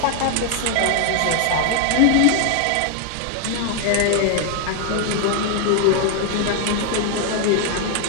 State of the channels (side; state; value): both; different; correlation 0.00